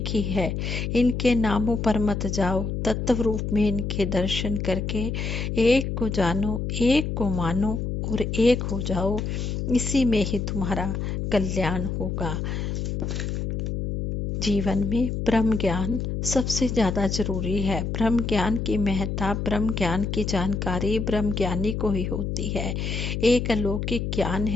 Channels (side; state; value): left; noise; hum, 2 dB below the sound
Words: ही है। इनके नामों पर मत जाओ, तत्व रूप में इनके दर्शन करके एक को जानो, एक को मानो और एक हो जाओ। इसी में ही तुम्हारा कल्याण होगा। जीवन में ब्रह्म ज्ञान सबसे ज़्यादा जरूरी है। ब्रह्म ज्ञान की महत्ता, ब्रह्म ज्ञान की जानकारी ब्रह्म ज्ञानी को ही होती है। एक अलौकिक ज्ञान